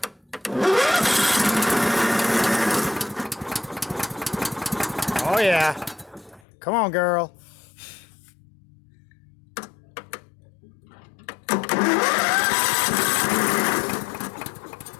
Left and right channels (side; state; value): right; drops out; at 6.4 s